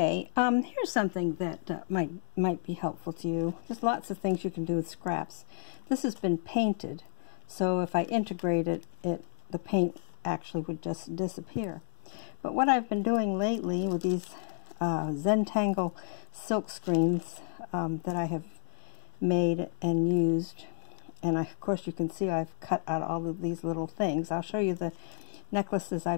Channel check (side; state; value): right; silent; digital silence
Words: here's something that might be helpful to you. There's lots of things you can do with scraps. This has been painted, so if I integrate it, the paint actually would just disappear. But what I've been doing lately with these Zentangle silk screens that I have made and used, and of course you can see I've cut out all of these little things. I'll show you the necklaces